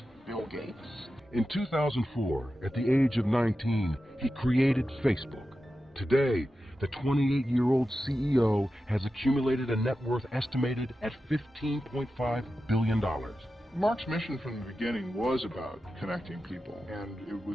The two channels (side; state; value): both; normal; correlation 0.92